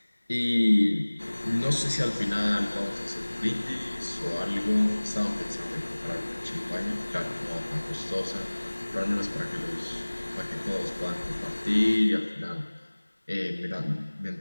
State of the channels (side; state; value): both; inverted; correlation -1.00